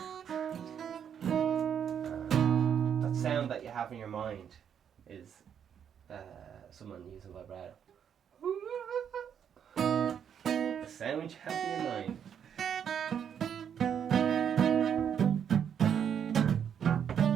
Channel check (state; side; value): quieter; left; 8.3 dB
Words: That sound that you have in your mind is someone using vibrato. The sound you have in your mind.